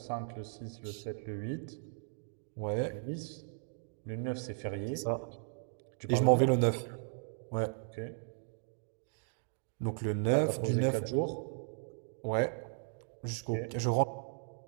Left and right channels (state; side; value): silent; left; digital silence